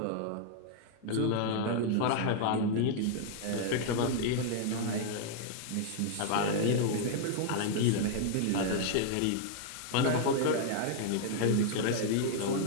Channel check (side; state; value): both; different; correlation -0.01